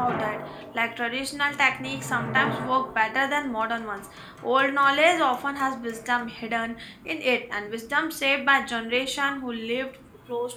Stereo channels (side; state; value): both; identical; correlation 1.00